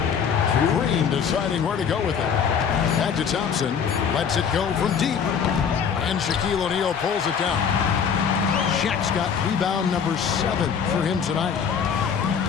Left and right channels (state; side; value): quieter; right; 7.1 dB